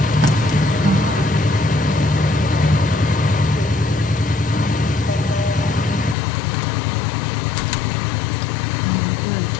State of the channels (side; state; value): right; drops out; at 6.2 s